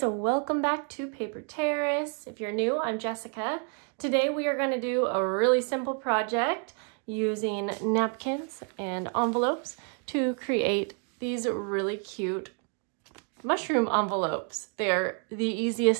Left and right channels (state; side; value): quieter; left; 38.9 dB